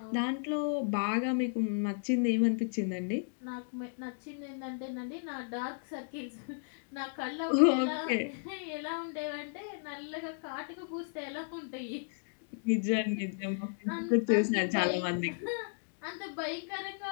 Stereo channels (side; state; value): right; silent; digital silence